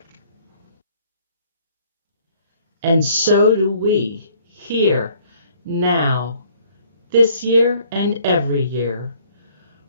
And so do we, here, now, this year and every year.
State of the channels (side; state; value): both; inverted; correlation -0.60